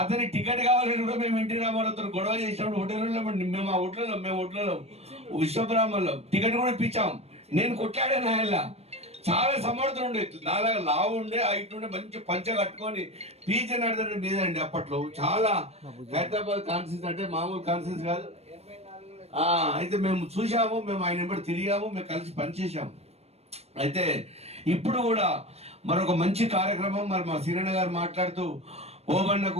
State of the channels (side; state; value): left; late; 0.30 ms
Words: అతని టికెట్ కావాలని కూడా మేము ఎన్టీ రామారావుతో గొడవ చేసినప్పుడు హోటల్లో మేము ఆ హోటల్లో విశ్వబ్రాహ్మణలో టికెట్ కూడా ఇప్పించాం. నేను కొట్లాడాను ఆయన. చాలా సమర్థులు ఉండే, నాలాగా లావు ఉండే, హైట్ ఉండే, మంచి పంచ కట్టుకొని పీచ నడదండి మీదండి. అప్పట్లో చాలా హైదరాబాద్ కాన్ఫరెన్స్ అంటే మామూలు కాన్ఫరెన్స్ కాదు. అయితే మేము చూసాము, మేము ఆయన వెంబడి తిరిగాము, మేము కలిసి పనిచేసాము. అయితే ఇప్పుడు కూడా మరొక మంచి కార్యక్రమం, మరి మా సీరణ గారు మాట్లాడుతూ ఓబన్నకు